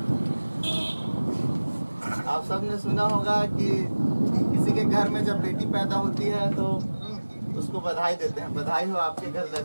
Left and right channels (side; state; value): both; inverted; correlation -1.00